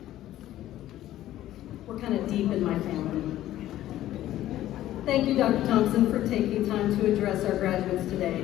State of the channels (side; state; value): right; quieter; 13.7 dB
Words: We're kind of deep in my family. Thank you, Dr. Thompson, for taking time to address our graduates